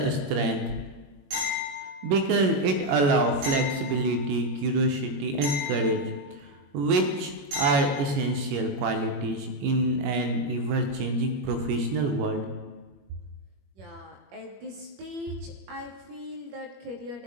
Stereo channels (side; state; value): left; late; 21 ms